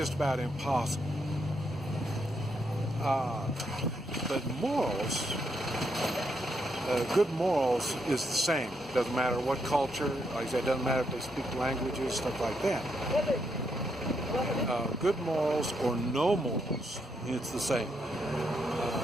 about impossible. But morals, good morals is the same. Doesn't matter what culture, like I said, doesn't matter if they speak languages, stuff like that. Good morals or no morals, it's the same.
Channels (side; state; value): both; normal; correlation 0.78